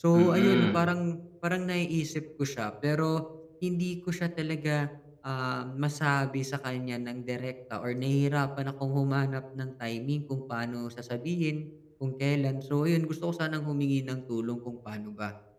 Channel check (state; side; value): identical; both; correlation 1.00